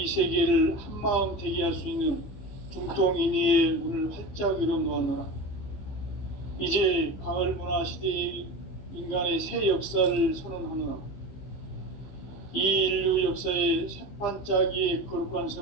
세계를 한마음 되게 할 수 있는 중통인의의 문을 활짝 열어놓았노라. 이제 가을 문화 시대의 인간의 새 역사를 선언하노라. 이 인류 역사의 새반짝이의 거룩한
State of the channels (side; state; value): right; late; 15 ms